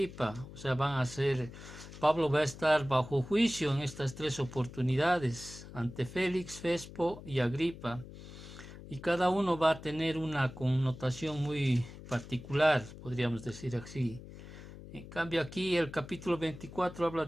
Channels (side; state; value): left; noise; hum, 15 dB below the sound